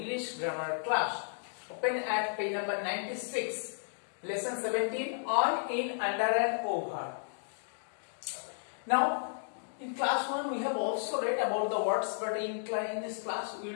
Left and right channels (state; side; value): silent; right; digital silence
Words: grammar class. Open at page number 96, lesson 17 on, in, under and over. Now, in class 1 we have also read about the words, but in this class we